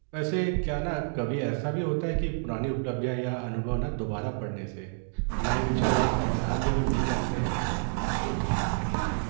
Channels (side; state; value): left; silent; digital silence